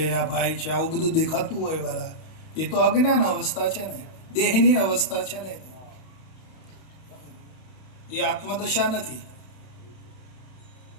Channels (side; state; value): right; late; 31 ms